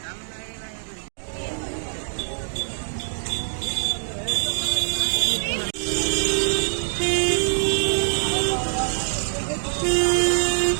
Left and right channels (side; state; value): left; silent; digital silence